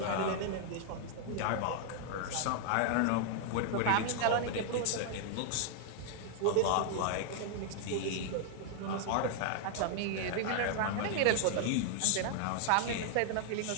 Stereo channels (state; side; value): different; both; correlation 0.00